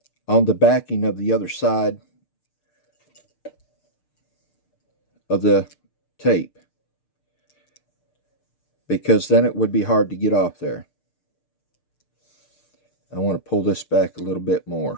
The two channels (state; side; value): late; right; 6.7 ms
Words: on the backing of the other side of the tape, because then it would be hard to get off there. I want to pull this back a little bit